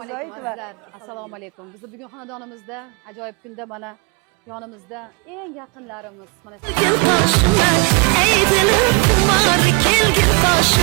Assalomu alaykum. Biz bugun xonadonimizda ajoyib kunda mana yonimizda eng yaqinlarimiz mana Kelgin qoshimda, ey dilim xumor, kelgin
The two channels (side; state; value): left; quieter; 29.3 dB